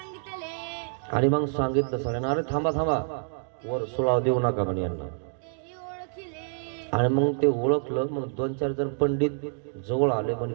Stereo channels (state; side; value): silent; left; digital silence